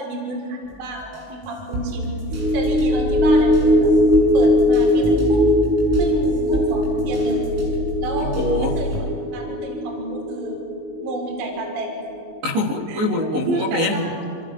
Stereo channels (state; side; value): late; left; 19 ms